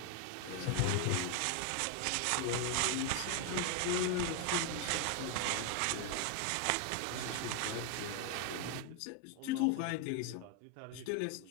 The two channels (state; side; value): different; both; correlation 0.01